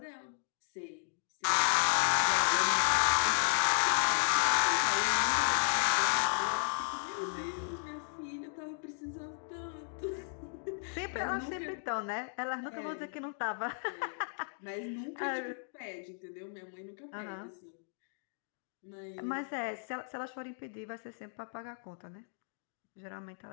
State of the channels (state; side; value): silent; right; digital silence